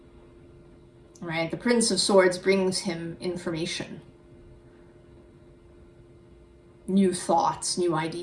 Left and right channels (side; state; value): both; identical; correlation 1.00